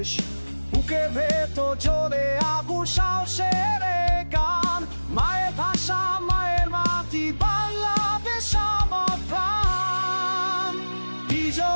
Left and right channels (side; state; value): both; inverted; correlation -1.00